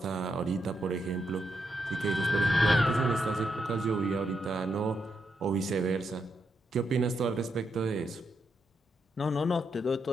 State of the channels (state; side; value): normal; both; correlation 0.82